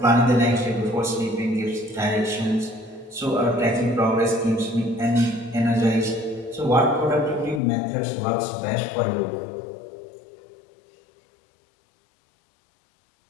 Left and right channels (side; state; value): right; drops out; at 7.6 s